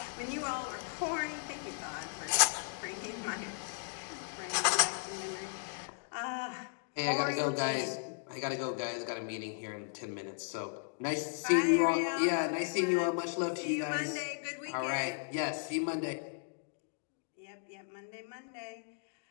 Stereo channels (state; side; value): silent; right; digital silence